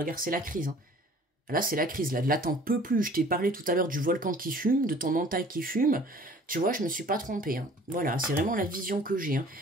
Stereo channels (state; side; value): normal; both; correlation 0.51